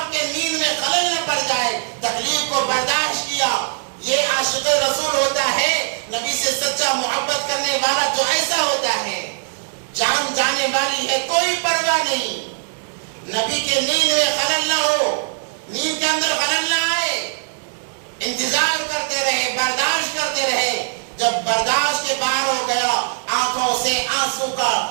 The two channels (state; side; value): silent; left; digital silence